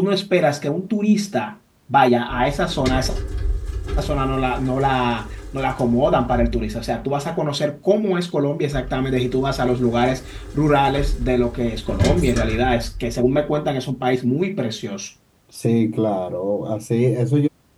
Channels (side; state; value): both; identical; correlation 1.00